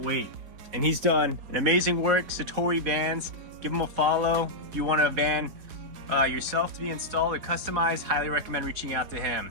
And he's done an amazing work. Satori Vans, give him a follow. If you want a van yourself to be installed or customized, highly recommend reaching out to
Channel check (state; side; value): late; left; 4.4 ms